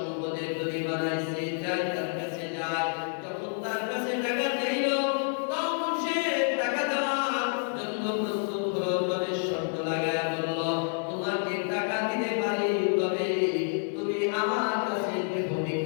ধনী বানাইছে, যাই তার কাছে যায়, যখন তার কাছে টাকা চাইল তখন সে টাকা দেওয়ার জন্য প্রস্তুত হলো, তবে শর্ত লাগায়া বলল, তোমাকে টাকা দিতে পারি, তবে তুমি আমার কাছে দেহ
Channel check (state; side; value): silent; right; 55 dB below the other